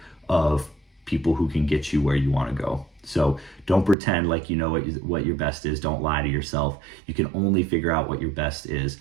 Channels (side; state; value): left; drops out; at 4.0 s